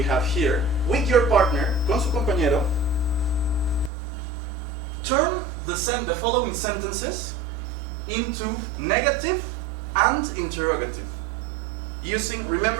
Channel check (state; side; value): drops out; left; at 3.9 s